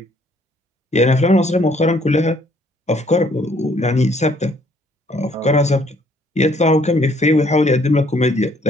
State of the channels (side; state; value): both; normal; correlation 0.64